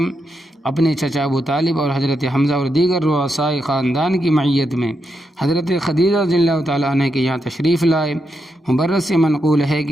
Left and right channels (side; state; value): both; normal; correlation 0.83